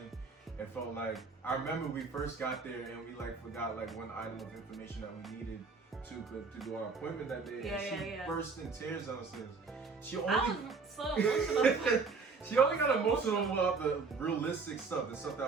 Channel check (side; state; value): left; quieter; 4.6 dB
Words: It felt like, I remember we first got there and we like forgot like one item of information that we needed to do our appointment that day. She burst in tears downstairs. I was so emotional. She only got emotional about the realistic stuff, the stuff